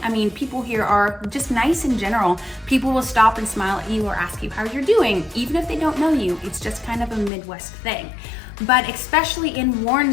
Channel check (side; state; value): right; drops out; at 7.3 s